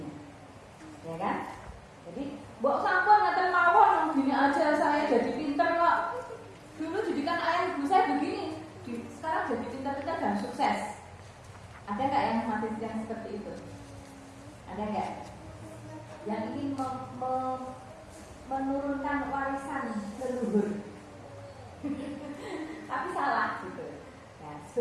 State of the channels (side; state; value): both; identical; correlation 1.00